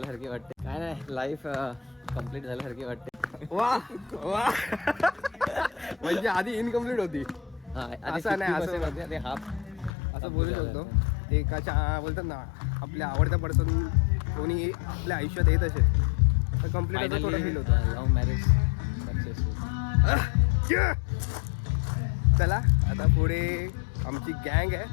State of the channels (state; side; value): drops out; right; at 9.9 s